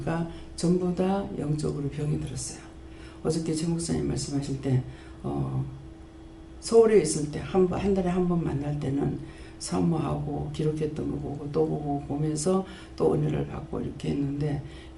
전부 다 영적으로 병이 들었어요. 어저께 최 목사님 말씀하실 때 서울에 있을 때 한 달에 한 번 만날 때는 사모하고 기록했던 거 보고 또 보고 보면서 또 은혜를 받고 이렇게 했는데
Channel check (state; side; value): identical; both; correlation 1.00